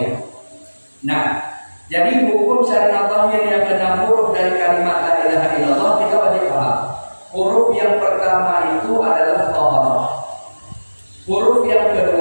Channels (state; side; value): inverted; both; correlation -1.00